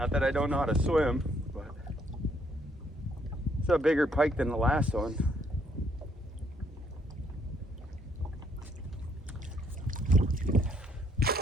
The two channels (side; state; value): both; normal; correlation 0.69